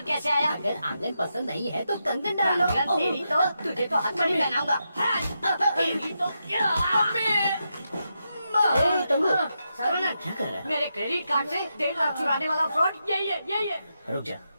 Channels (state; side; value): inverted; both; correlation -0.85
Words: कैसे आया? अगर आंगन पसंद नहीं है तो कंगन डाल लो। आंगन तेरी तो, तुझे तो हथकड़ी पहनाऊंगा। तेरी तो सर्वनंद, क्या कर रहा है? मेरे क्रेडिट कार्ड से 1.5 लाख चुराने वाला फ्रॉड यही है। रुक जा,